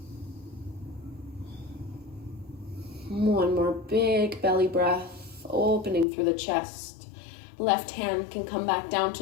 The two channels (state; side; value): drops out; right; at 6.1 s